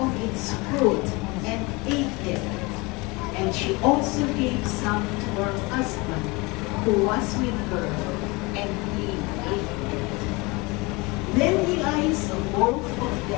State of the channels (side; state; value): right; quieter; 25.5 dB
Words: its fruit and ate it, and she also gave some to her husband who was with her, and he ate it. Then the eyes of both of